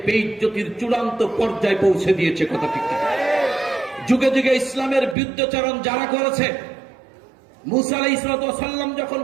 বেইজ্জতির চূড়ান্ত পর্যায়ে পৌঁছে দিয়েছে, কথা ঠিক কিনা? যুগে যুগে ইসলামের বিরুদ্ধাচরণ যারা করেছে, মুসা আলাইহিস সালাম যখন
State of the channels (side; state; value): left; drops out; at 5.2 s